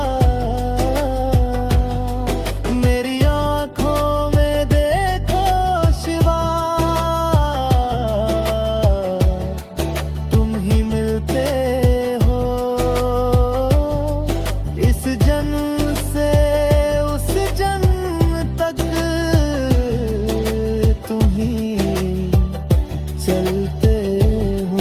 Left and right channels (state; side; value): identical; both; correlation 1.00